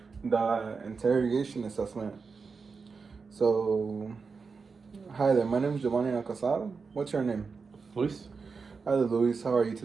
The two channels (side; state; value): left; quieter; 4.9 dB